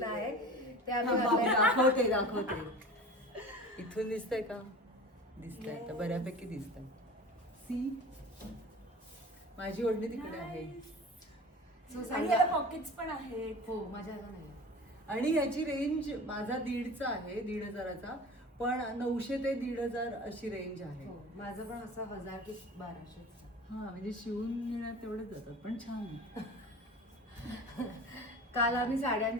आहे ते आम्ही घातलंय. दाखवते. इथून दिसतंय का? दिसतंय आता बऱ्यापैकी दिसतंय. सी माझी ओढणी तिकडे आहे. आणि याला पॉकेट्स पण आहेत. हो माझ्या नाही. आणि याची रेंज माझा 1,500चा आहे, 1,500चा, पण 900 ते 1,500 अशी रेंज आहे. हो माझं पण असं 1000 की 1200. हा म्हणजे शिवून घेण्यात तेवढेच जातात, पण छान आहे. काल आम्ही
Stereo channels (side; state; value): both; normal; correlation 0.37